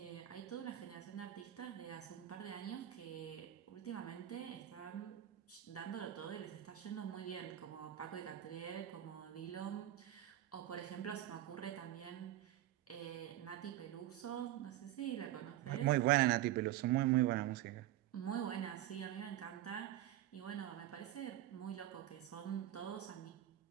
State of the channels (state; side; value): quieter; left; 13.3 dB